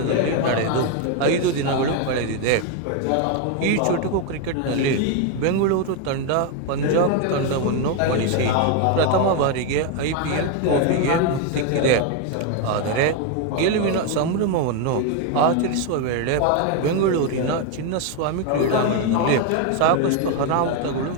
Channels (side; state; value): both; different; correlation 0.01